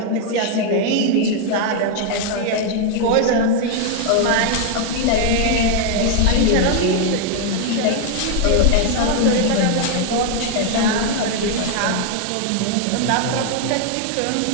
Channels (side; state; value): both; different; correlation 0.01